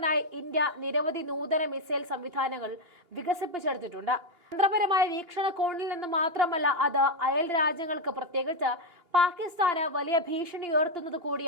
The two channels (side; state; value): left; late; 2.9 ms